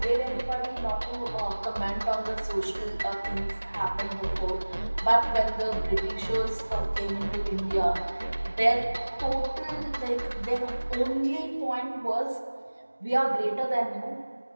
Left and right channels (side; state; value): both; inverted; correlation -1.00